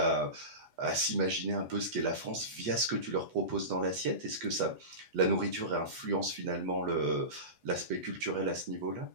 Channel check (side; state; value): left; late; 8.1 ms